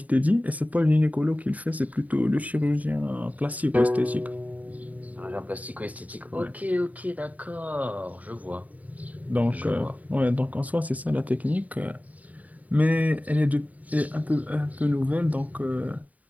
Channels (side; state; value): left; late; 0.073 ms